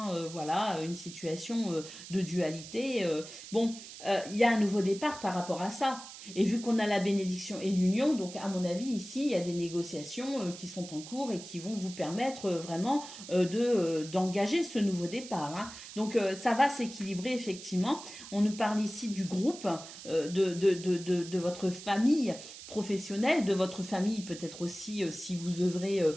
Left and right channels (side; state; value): right; noise; hiss, 14 dB below the sound